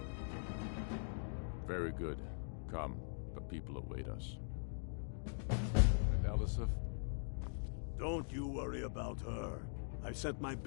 Very good. Come, the people await us. And Elisif? Don't you worry about her. I've sent my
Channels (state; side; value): silent; right; digital silence